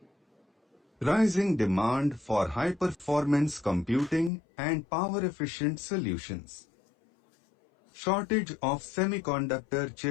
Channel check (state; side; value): drops out; right; at 4.3 s